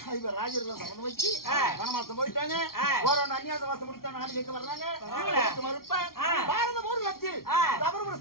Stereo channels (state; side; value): late; right; 0.93 ms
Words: இவர் ராஜர்கள் சபதம் வச்சு வனவாசம் போயிட்டாங்க. ஒரு அந்நியாத வாசம் முடித்தா நாடு கேட்க வர்றாங்க. மறுப்ப பாரத போர் லட்சில் தவறு